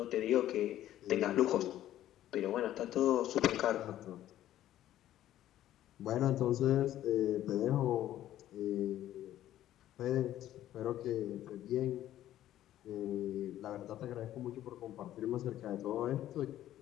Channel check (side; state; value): right; quieter; 12.9 dB